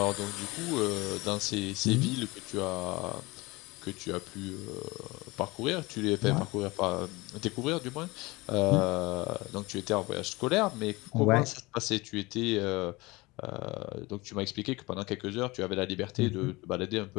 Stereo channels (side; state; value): right; quieter; 22.8 dB